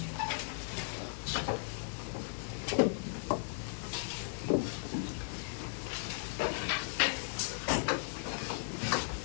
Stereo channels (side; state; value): right; silent; digital silence